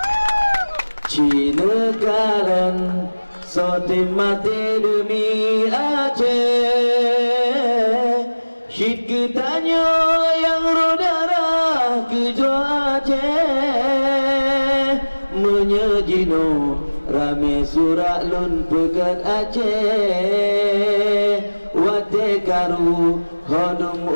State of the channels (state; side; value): inverted; both; correlation -1.00